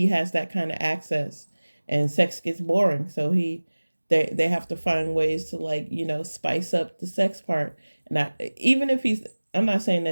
has that kind of access and sex gets boring. So they have to find ways to, like, you know, spice up the sex part. And even if I'm not saying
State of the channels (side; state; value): both; inverted; correlation -1.00